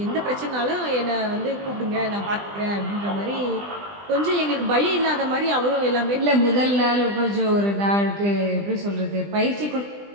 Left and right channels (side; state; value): left; late; 20 ms